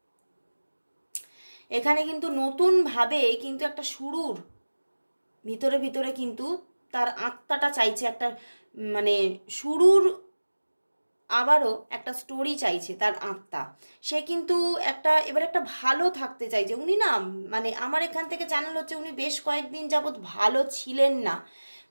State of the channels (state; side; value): inverted; both; correlation -1.00